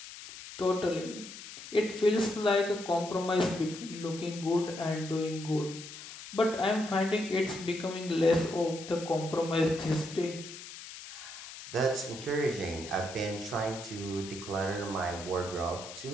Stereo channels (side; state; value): left; noise; hiss, 13 dB below the sound